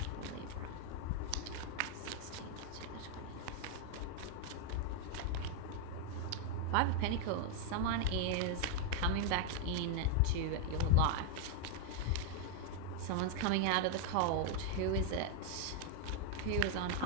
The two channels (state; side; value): different; both; correlation 0.00